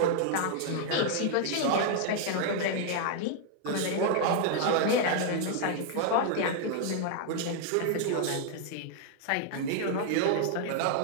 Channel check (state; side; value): different; both; correlation 0.00